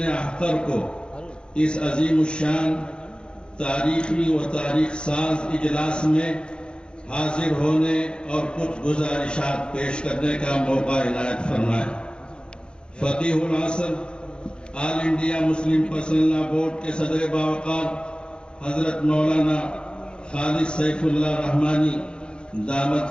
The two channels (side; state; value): right; late; 0.051 ms